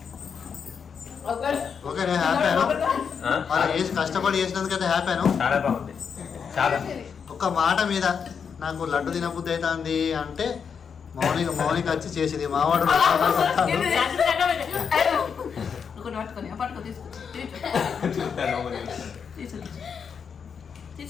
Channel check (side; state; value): right; quieter; 6.6 dB